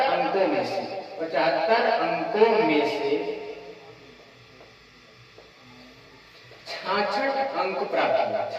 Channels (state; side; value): identical; both; correlation 1.00